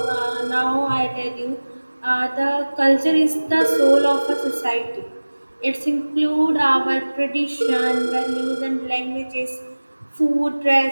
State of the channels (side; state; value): both; inverted; correlation -1.00